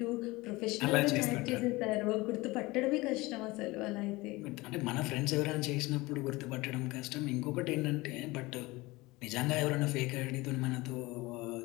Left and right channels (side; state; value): right; quieter; 21.6 dB